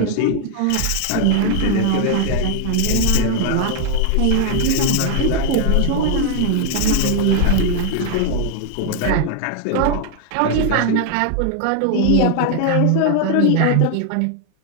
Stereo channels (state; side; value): different; both; correlation 0.00